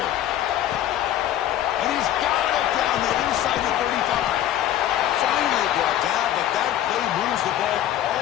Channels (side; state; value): right; quieter; 12.0 dB